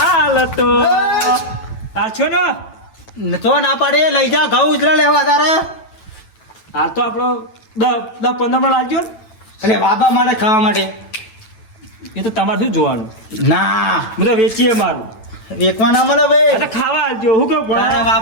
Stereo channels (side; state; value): right; late; 9.1 ms